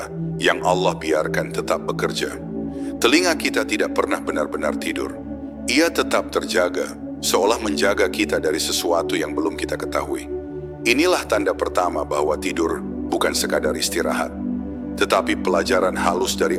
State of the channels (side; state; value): both; identical; correlation 1.00